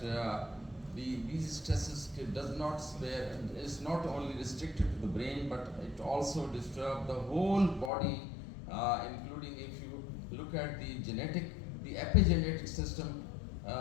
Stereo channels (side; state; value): right; drops out; at 7.9 s